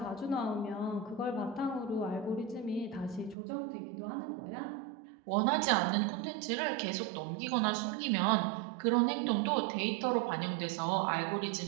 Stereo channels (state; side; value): drops out; left; at 3.4 s